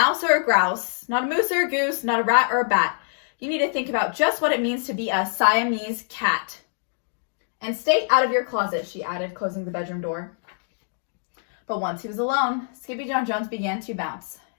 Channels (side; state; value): right; silent; digital silence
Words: or a grouse, not a moose or a goose, not a rat or a bat. You need to think about just what it means to be a Siamese cat. And stay out of your closet," she added, closing the bedroom door. But once he was alone, Skippyjon Jones began to bounce,